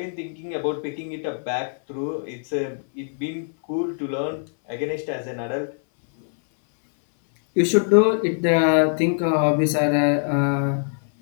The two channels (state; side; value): silent; right; 62 dB below the other